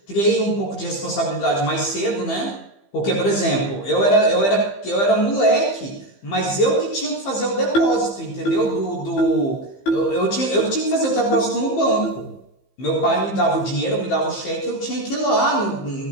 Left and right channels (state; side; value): late; right; 15 ms